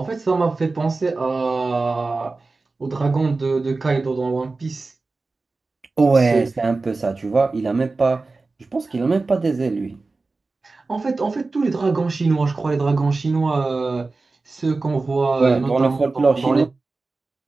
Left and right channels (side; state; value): left; quieter; 3.7 dB